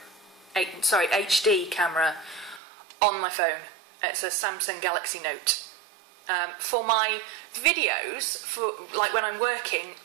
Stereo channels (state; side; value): drops out; left; at 2.6 s